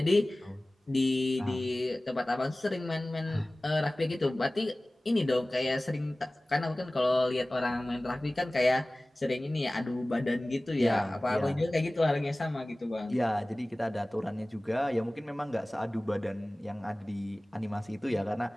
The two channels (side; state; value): both; normal; correlation 0.98